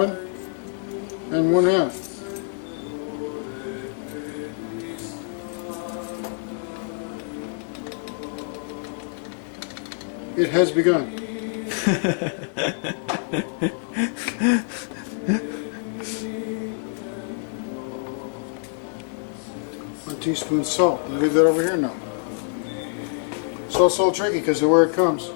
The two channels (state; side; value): silent; right; 61 dB below the other